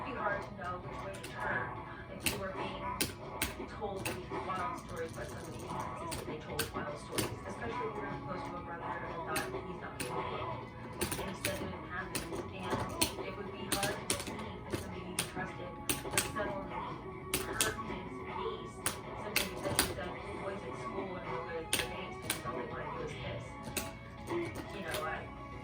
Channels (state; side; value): identical; both; correlation 1.00